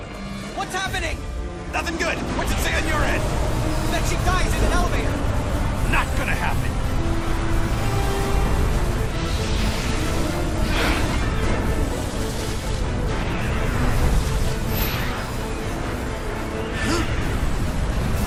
What's happening? Nothing good. What's it say on your end? That she dies in an elevator. Not gonna happen.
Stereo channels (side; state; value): both; identical; correlation 1.00